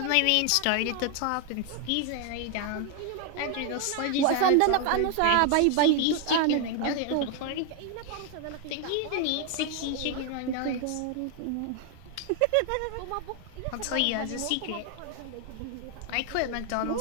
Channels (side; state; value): both; different; correlation 0.00